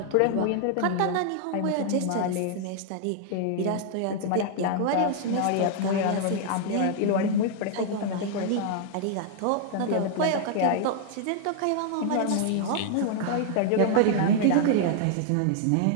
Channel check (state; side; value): different; both; correlation 0.00